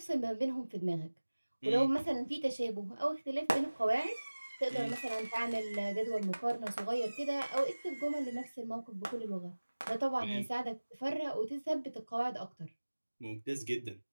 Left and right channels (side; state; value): both; inverted; correlation -1.00